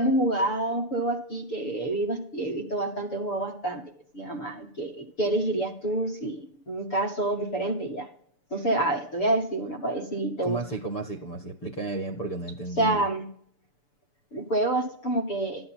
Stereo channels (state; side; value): late; right; 6.9 ms